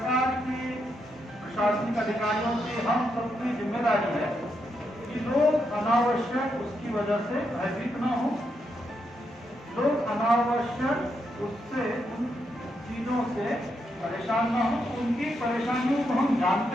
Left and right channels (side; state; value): both; normal; correlation 0.81